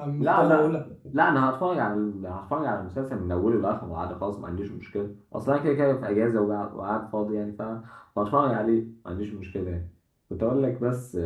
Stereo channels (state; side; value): identical; both; correlation 1.00